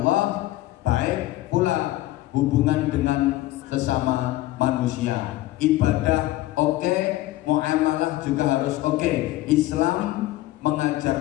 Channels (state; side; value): quieter; right; 16.6 dB